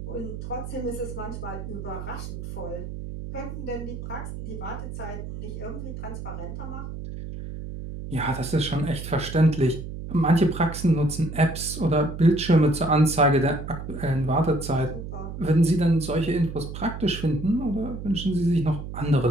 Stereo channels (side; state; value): right; noise; hum, 8 dB below the sound